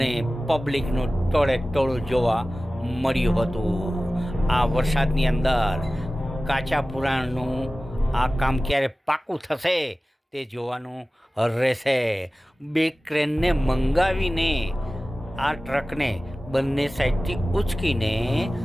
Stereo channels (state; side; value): normal; both; correlation 0.96